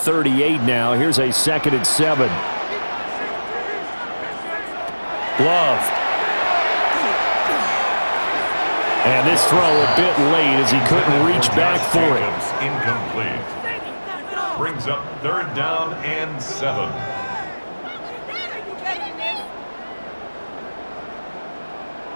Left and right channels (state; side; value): inverted; both; correlation -1.00